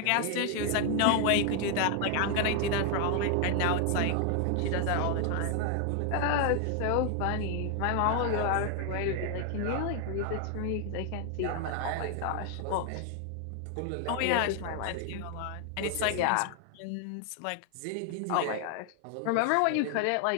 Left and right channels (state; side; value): different; both; correlation 0.00